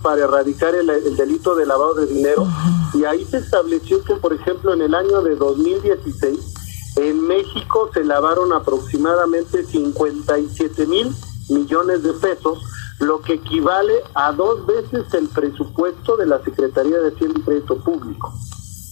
erradicar el delito de lavado de dinero. Y ahí se estableció que, por ejemplo, en el año de 2016, en México se lavaron aproximadamente 57,000 millones de pesos, lo que equivale a 2 veces el presupuesto de la Secretaría de Hacienda y Crédito Público.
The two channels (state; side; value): silent; right; 68 dB below the other